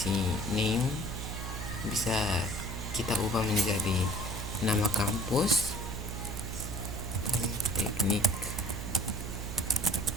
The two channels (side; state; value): right; noise; hum, 5 dB below the sound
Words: name bisa kita ubah menjadi nama kampus, Politeknik